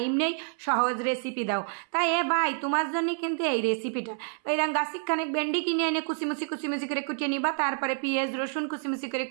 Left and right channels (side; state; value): left; silent; 59 dB below the other